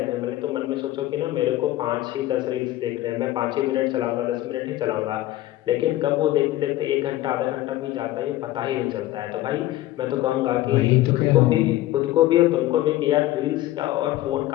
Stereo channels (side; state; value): right; quieter; 15.4 dB